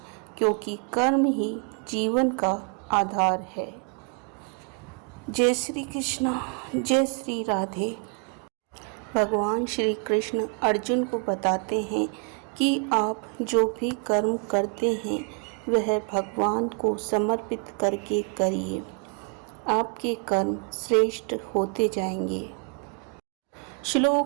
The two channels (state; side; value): quieter; left; 37.0 dB